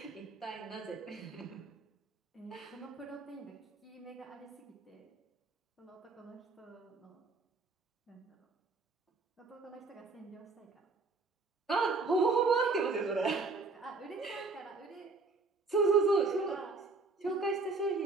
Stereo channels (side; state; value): left; quieter; 3.8 dB